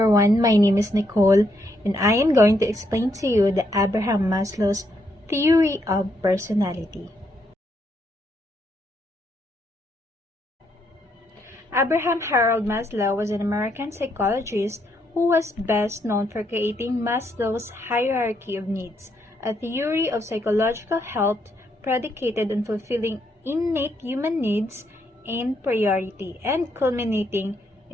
my name is Nicole and I am going to explain to you the Abraham Maslow's theory of personality. Abraham Harold Maslow was an American psychologist who was best known for creating Maslow's hierarchy of needs, a theory of psychological health predicated on fulfilling innate human needs in priority and culminating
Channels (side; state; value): both; normal; correlation 0.76